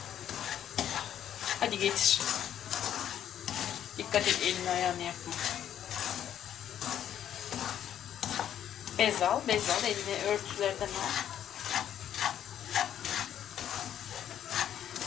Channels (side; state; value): right; quieter; 10.3 dB